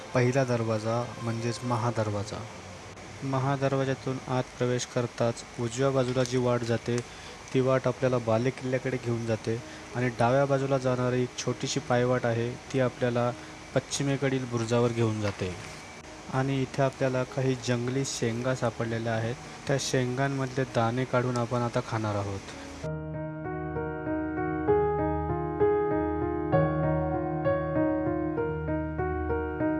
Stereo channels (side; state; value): both; identical; correlation 1.00